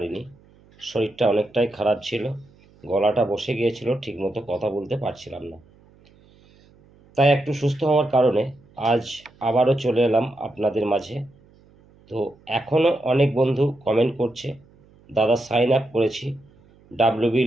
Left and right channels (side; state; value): right; noise; hum, 29 dB below the sound